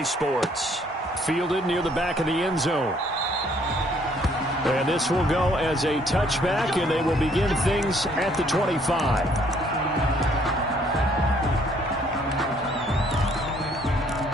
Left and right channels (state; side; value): normal; both; correlation 0.64